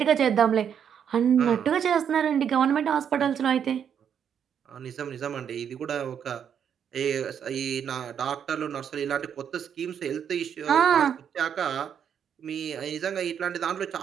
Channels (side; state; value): left; quieter; 8.2 dB